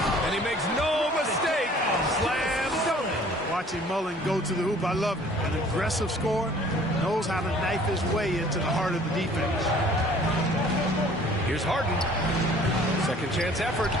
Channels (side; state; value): both; normal; correlation 0.53